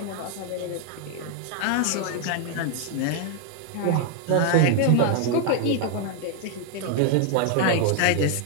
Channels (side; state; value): both; different; correlation 0.00